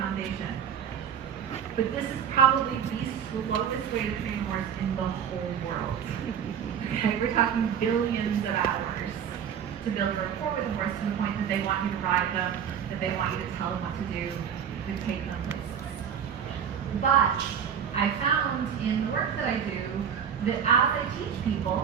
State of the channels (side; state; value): left; quieter; 8.1 dB